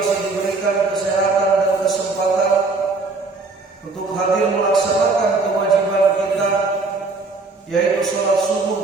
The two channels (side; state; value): left; quieter; 3.8 dB